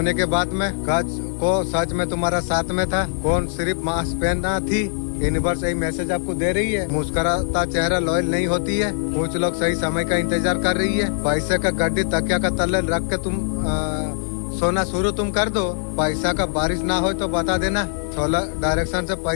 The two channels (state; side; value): silent; right; digital silence